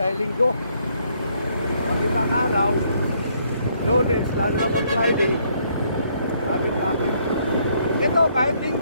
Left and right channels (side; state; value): both; inverted; correlation -0.69